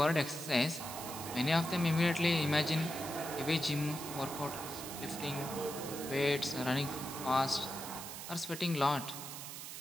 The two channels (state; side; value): noise; right; hiss, 9 dB below the sound